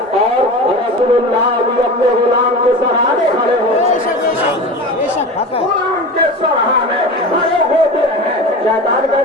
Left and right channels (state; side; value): normal; both; correlation 0.31